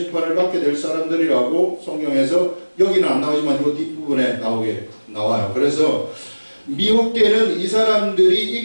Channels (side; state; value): both; inverted; correlation -1.00